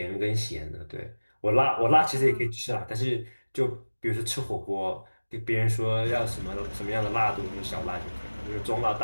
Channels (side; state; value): both; inverted; correlation -1.00